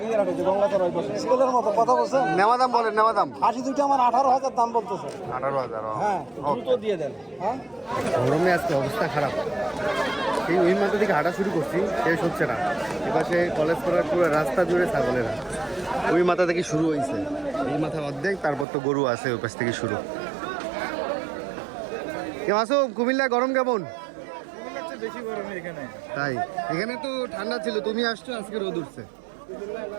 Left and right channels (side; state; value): left; drops out; at 18.7 s